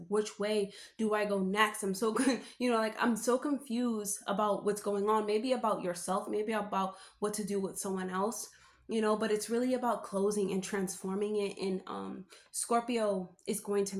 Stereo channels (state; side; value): identical; both; correlation 1.00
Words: which way do I go next? I'm so good, I'm so confused about what's going on, maybe about yourself, maybe about what to do with someone else. But it's really about closing and transforming it. And Scorpio is going to